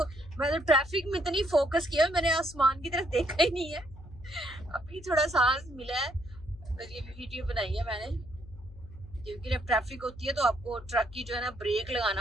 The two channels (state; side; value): noise; left; hum, 18 dB below the sound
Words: मैं तो ट्रैफिक में इतनी फोकस किया, मैंने आसमान की तरफ देखा ही नहीं है। अभी थोड़ा सांस मिला है तो ये वीडियो बनाई है मैंने, क्योंकि जब ट्रैफिक होती है तो आपको ट्रक की जो है ना ब्रेक